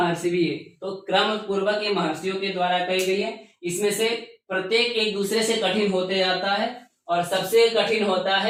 भी। तो क्रम पूर्वक ये महर्षियों के द्वारा कही गई है। इसमें से प्रत्येक एक दूसरे से कठिन होते जाता है और सबसे कठिन होता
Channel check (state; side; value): identical; both; correlation 1.00